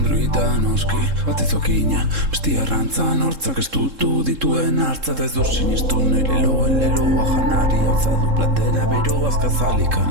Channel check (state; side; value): late; left; 3.7 ms